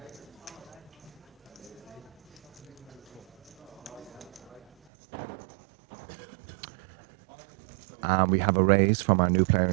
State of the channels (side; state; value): left; drops out; at 4.7 s